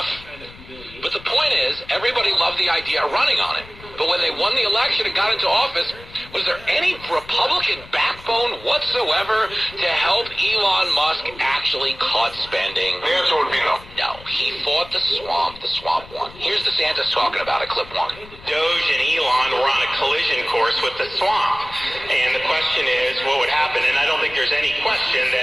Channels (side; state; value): left; noise; rumble, 19 dB below the sound